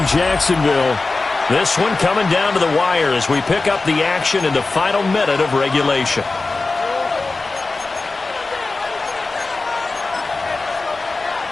Jacksonville. This one coming down to the wire as we pick up the action in the final minute of regulation.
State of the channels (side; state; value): right; quieter; 3.6 dB